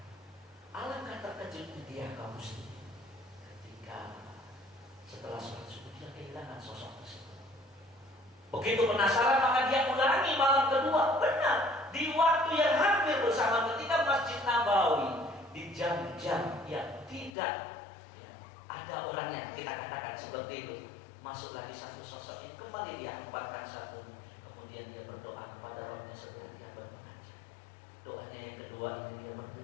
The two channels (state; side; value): drops out; right; at 17.4 s